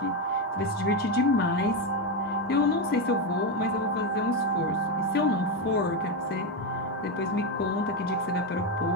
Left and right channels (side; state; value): both; normal; correlation 0.09